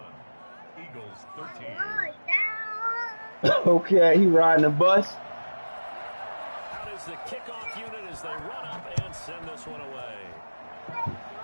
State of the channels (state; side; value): inverted; both; correlation -1.00